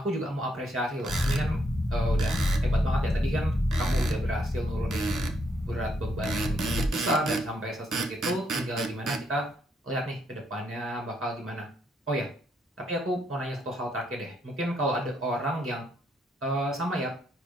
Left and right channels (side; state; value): both; normal; correlation 0.74